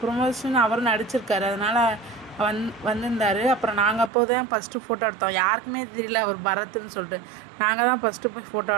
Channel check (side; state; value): left; drops out; at 4.1 s